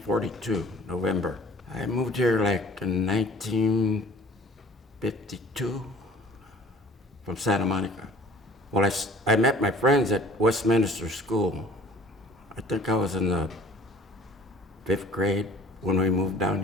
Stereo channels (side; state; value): both; normal; correlation 0.50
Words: November. I moved here like in 1952 from Santa Monica. Well, I met my friends at Westminster School. I think I was in the 5th grade when we moved down